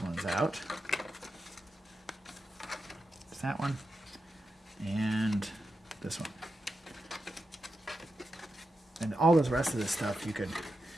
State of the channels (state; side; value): normal; both; correlation 0.88